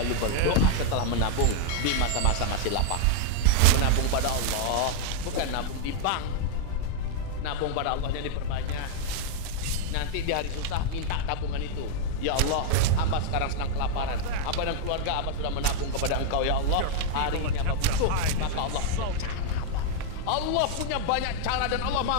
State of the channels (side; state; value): both; different; correlation -0.01